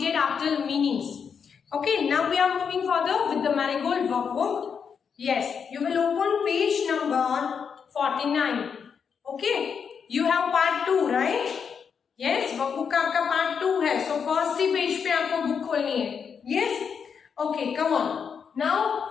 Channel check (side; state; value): right; quieter; 6.6 dB